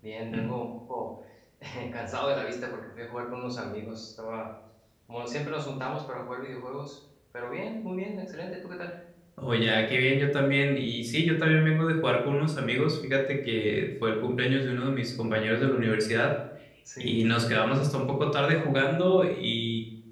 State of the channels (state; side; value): identical; both; correlation 1.00